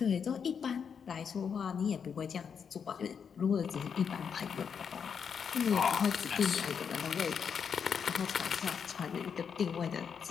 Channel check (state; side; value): quieter; right; 6.8 dB